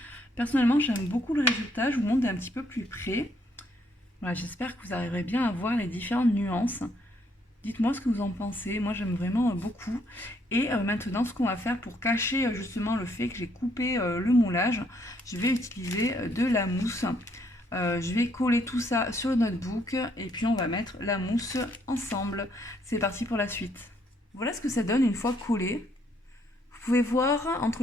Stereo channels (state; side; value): normal; both; correlation 0.70